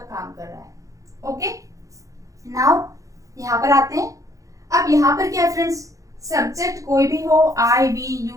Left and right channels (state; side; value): late; left; 0.16 ms